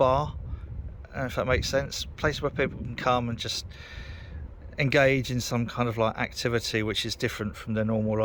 if that makes sense. Place where people can come and just engage in some kind of like activity which is different from their normal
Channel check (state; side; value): identical; both; correlation 1.00